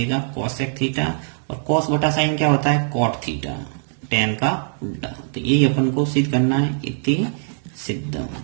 कॉसेक थीटा, और कॉस बटा साइन क्या होता है कॉट थीटा, टेन का उल्टा। तो यही अपन को सिद्ध करना है, इति सिद्धम।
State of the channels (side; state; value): left; silent; digital silence